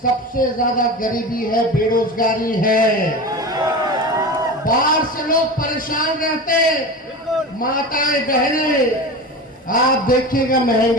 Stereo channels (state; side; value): normal; both; correlation 0.28